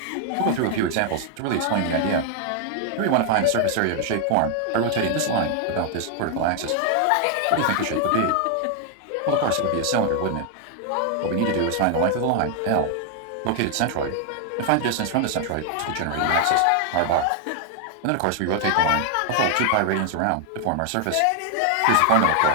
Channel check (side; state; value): both; different; correlation 0.00